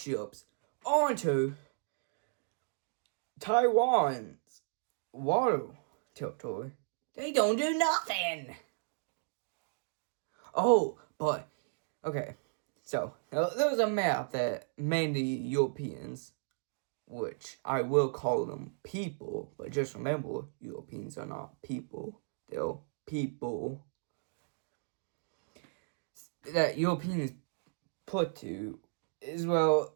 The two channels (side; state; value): left; silent; digital silence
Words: onto Taiwan's water territory, they don't do nothing. Oh, but, okay. So, there was a map that mainly Europeans, which I will call them people, but just remember, Europeans are not people. They're people that Europeans put to is, well,